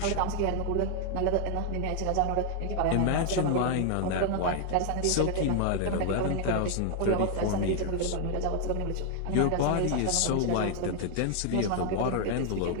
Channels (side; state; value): both; different; correlation 0.00